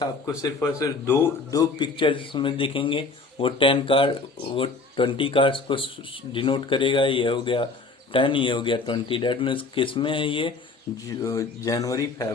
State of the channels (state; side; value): quieter; right; 3.8 dB